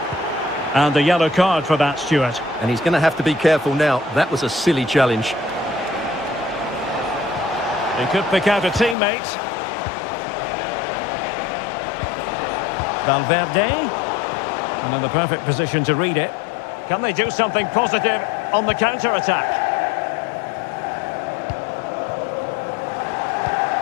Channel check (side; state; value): right; drops out; at 9.0 s